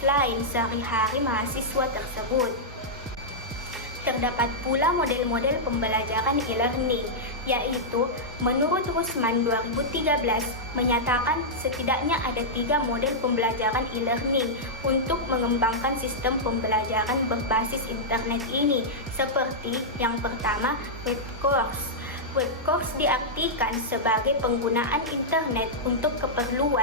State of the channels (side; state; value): both; normal; correlation -0.09